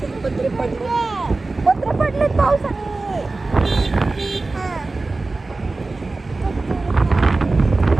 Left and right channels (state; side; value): quieter; left; 3.4 dB